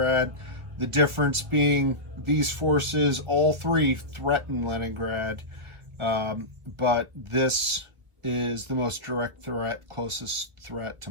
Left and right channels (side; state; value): left; late; 1.7 ms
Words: The difference being these forces, all three threaten Leningrad, but this is the most direct threat, closest threat to